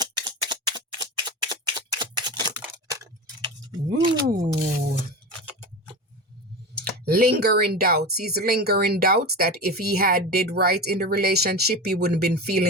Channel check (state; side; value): normal; both; correlation 0.26